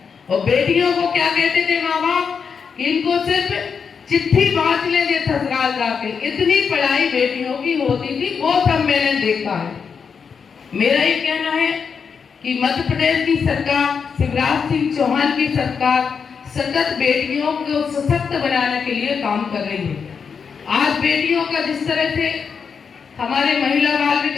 और बेटियों को क्या कहते थे माँ बाप कि इनको सिर्फ चिट्ठी बांट लेंगे ससुराल जाके। इतनी पढ़ाई बेटियों की होती थी, वो सब मैंने देखा है। मेरा ये कहना है कि मध्य प्रदेश की सरकार, शिवराज सिंह चौहान की सरकार सतत बेटियों को सशक्त बनाने के लिए काम कर रही है। आज बेटियों का जिस तरह से हमारे महिला बाल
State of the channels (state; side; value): quieter; right; 6.2 dB